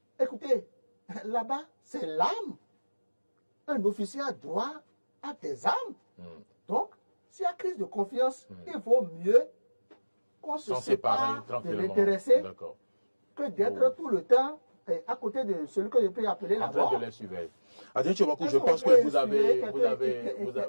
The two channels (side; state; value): both; inverted; correlation -1.00